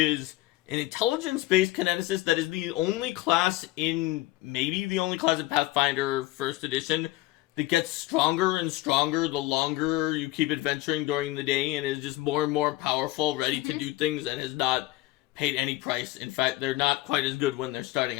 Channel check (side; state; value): right; quieter; 17.7 dB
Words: an intelligence-based kineticist that is the only class in Pathfinder 1st edition that gets stronger and stronger the longer you keep adventuring during the day and is just more and more powerful, ready to do things, and has not paid any price. In fact, they're not quite as good when they're starting